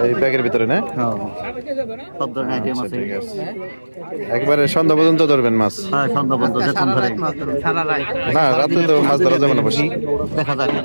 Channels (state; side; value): inverted; both; correlation -1.00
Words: এই ব্যাগের ভিতরে না? হ্যাঁ, সব ধরনের আইটেম আছে। ঠিক আছে, একবারে সন্ধ্যা পর্যন্ত ধরবেন মাছ? হ্যাঁ, সন্ধ্যা পর্যন্ত যতক্ষণ ধরে। না, রাতে তো মাছ ধরা যাবে না। বসি দেখা যাক